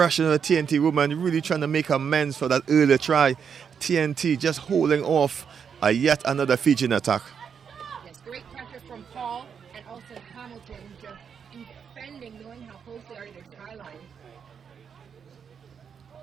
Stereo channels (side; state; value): left; quieter; 7.0 dB